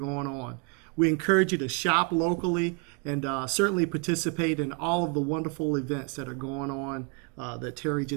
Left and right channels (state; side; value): quieter; left; 33.5 dB